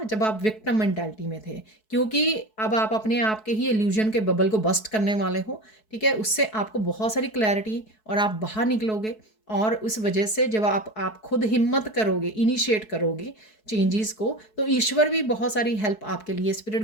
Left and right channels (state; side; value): late; right; 4.6 ms